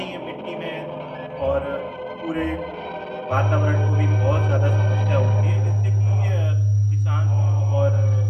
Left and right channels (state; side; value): identical; both; correlation 1.00